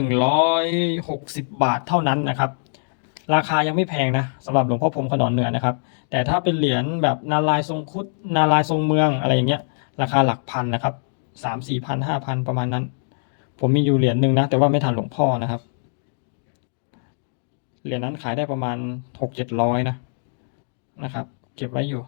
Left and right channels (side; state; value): right; silent; digital silence